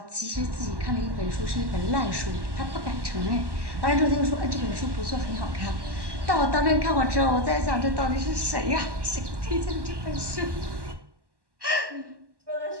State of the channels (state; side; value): late; left; 1.1 ms